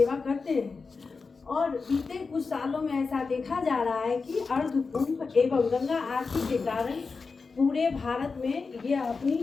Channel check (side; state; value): right; quieter; 4.6 dB